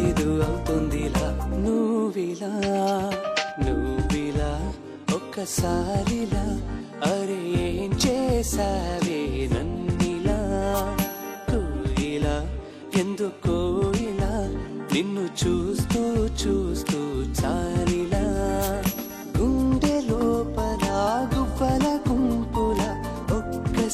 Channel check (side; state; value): both; identical; correlation 1.00